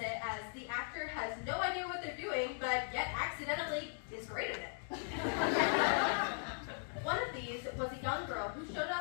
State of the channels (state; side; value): silent; right; digital silence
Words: as the actor has no idea what they're doing, but yet accidentally is great at it. One of these was a young girl who showed